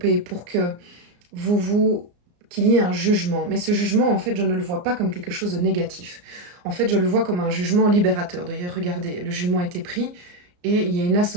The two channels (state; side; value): late; left; 34 ms